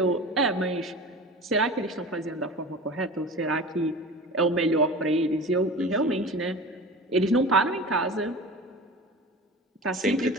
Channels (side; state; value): both; normal; correlation 0.35